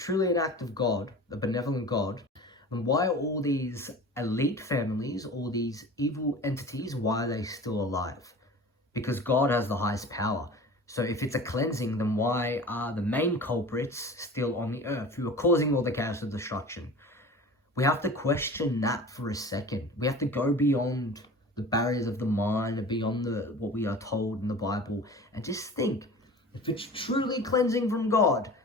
an act of God, a benevolent God, then why are all these elite families, all these evil entities, why are they still alive? Because God has the highest power. So if it's a cleansing, then why are the main culprits still on the earth, who are causing all the chaos and destruction? We have to question that for a second. We have to go beyond the barriers of the mind and beyond what we are told in the Bible, and just think, if it's truly cleansing from God,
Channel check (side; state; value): both; normal; correlation 0.39